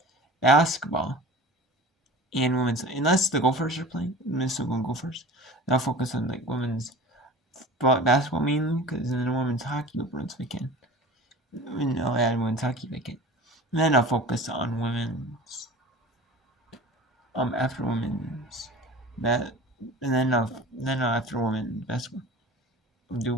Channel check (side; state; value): both; normal; correlation 0.39